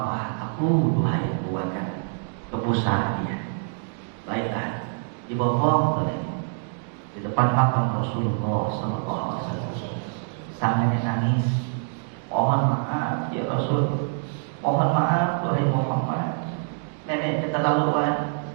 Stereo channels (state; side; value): silent; left; 57 dB below the other